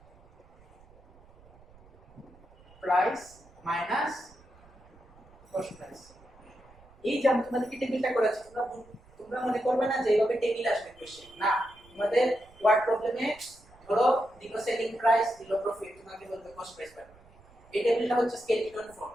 price minus cost price. এই যে আমি তোমাদেরকে টেবিলটা করেছি, তোমরা মনে করবে না যে এইভাবে টেবিল আসবে কোশ্চেন, না, তোমাদের ওয়ার্ড প্রবলেমে ধরো দিল সেলিং প্রাইস, দিল প্রফিট, তোমাকে বলবে কস্ট প্রাইস পাবে। এই টেবিলটা হচ্ছে স্কেলিটন ফর্ম,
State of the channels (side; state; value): right; noise; rumble, 26 dB below the sound